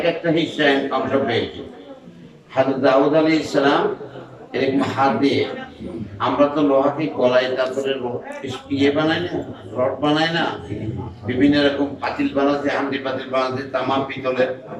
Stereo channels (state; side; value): identical; both; correlation 1.00